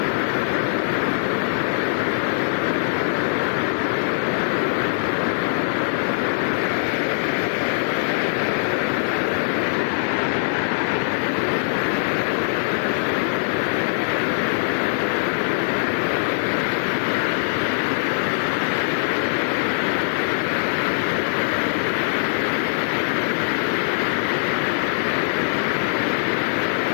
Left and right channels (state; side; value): silent; right; digital silence